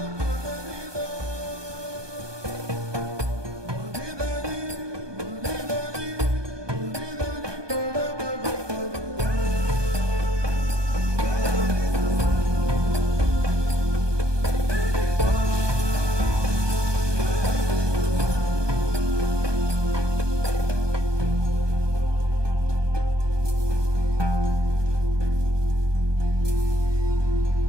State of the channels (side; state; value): left; late; 1.2 ms